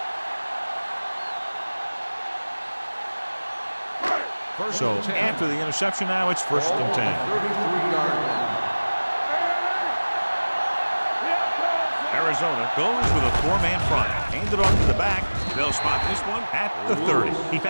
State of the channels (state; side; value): inverted; both; correlation -1.00